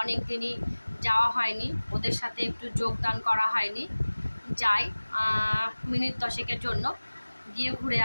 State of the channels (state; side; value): inverted; both; correlation -1.00